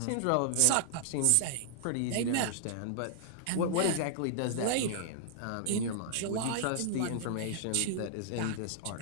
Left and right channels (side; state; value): both; different; correlation -0.01